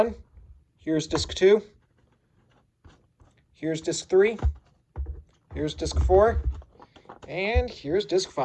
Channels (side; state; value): both; identical; correlation 1.00